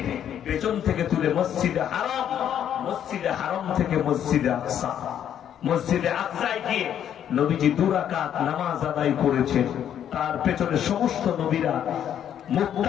পেছন থেকে তুলে মসজিদে হারাম, মসজিদে হারাম থেকে মসজিদে আকসা, মসজিদে আকসায় গিয়ে নবীজি 2 রাকাত নামাজ আদায় করেছেন। তার পেছনে সমস্ত নবীরা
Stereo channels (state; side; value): quieter; right; 9.8 dB